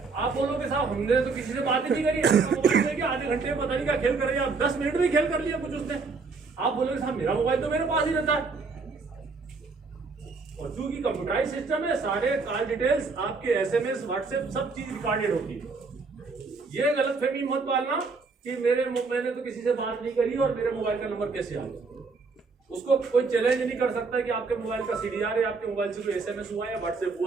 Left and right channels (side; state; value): left; quieter; 4.4 dB